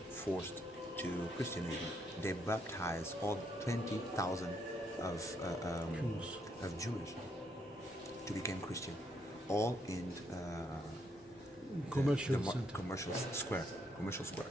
forced to Christianism. They baptized all 20,000 of Jewish to become Christian, all in Commercial the center. commercial square.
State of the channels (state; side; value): normal; both; correlation 0.74